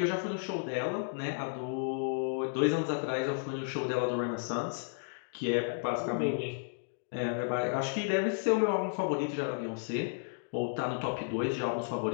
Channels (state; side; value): silent; right; digital silence